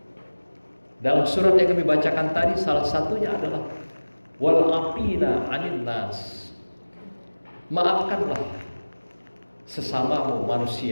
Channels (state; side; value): inverted; both; correlation -1.00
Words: dalam surat yang kami bacakan tadi. Salah satunya adalah wal afina anin nas, maafkanlah sesamamu